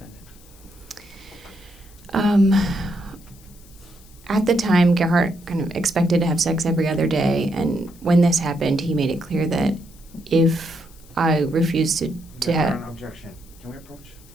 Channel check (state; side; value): noise; left; hiss, 25 dB below the sound